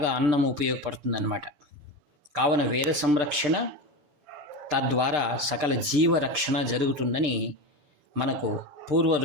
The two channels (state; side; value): late; left; 6.7 ms